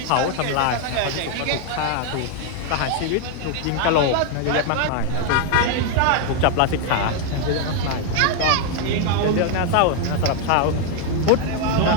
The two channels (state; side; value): different; both; correlation 0.01